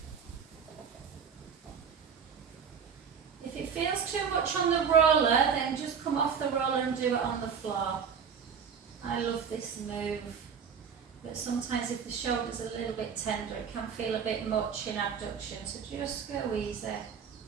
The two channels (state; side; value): quieter; left; 6.8 dB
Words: If it feels too much on the roller, then just come off the roller and do it on the floor. I love this move. But sometimes if the shoulder's a little bit tender, it can feel a bit much in abduction. So just go easy.